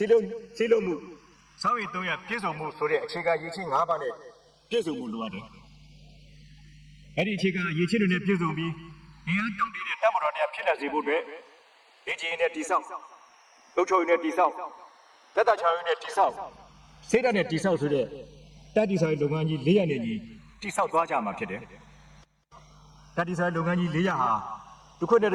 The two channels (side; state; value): both; identical; correlation 1.00